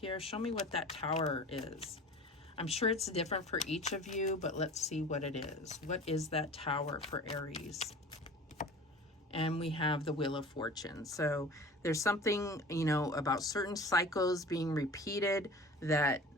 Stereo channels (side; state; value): both; normal; correlation 0.40